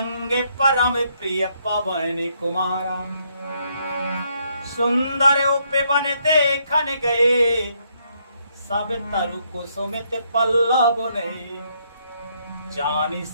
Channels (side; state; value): both; inverted; correlation -0.73